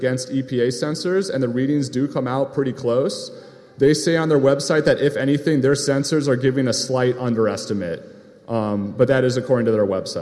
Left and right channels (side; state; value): both; identical; correlation 1.00